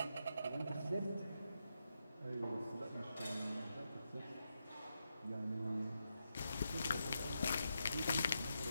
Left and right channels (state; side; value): inverted; both; correlation -0.85